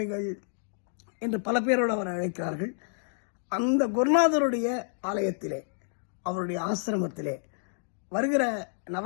என்று பல பேரோடு அவர் அழைக்கிறார்கள். அந்த குருநாதருடைய ஆலயத்திலே, அவருடைய ஆசிரமத்திலே வருகிற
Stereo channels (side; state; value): right; silent; digital silence